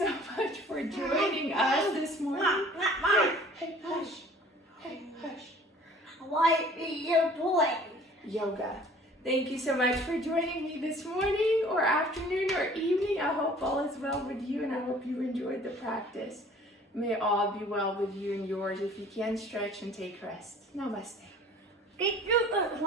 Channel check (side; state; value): both; normal; correlation 0.50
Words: much for joining us this morning. Hey, hush. Hey, hush. What are you doing? Yoga. Thank you so much for joining me this morning or afternoon or evening. I hope all is well with you and I hope you enjoyed the practice. May all be well with you and yours. If you can, stretch and take rest. Namaste. Did you